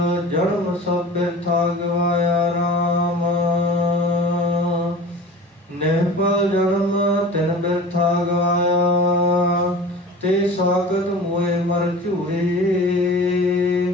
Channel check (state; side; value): normal; both; correlation 0.38